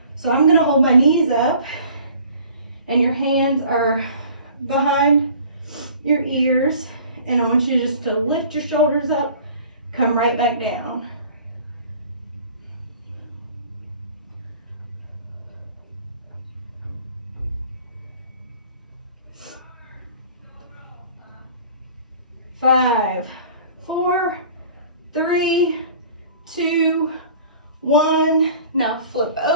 So I'm going to hold my knees up and your hands are behind your ears. And I want you just to lift your shoulders up, come right back down. Five, 4, 3, 2, 1. Now flip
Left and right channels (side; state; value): both; inverted; correlation -0.48